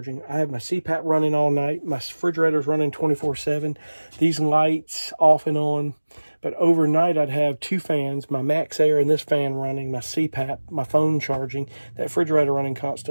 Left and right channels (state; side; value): inverted; both; correlation -1.00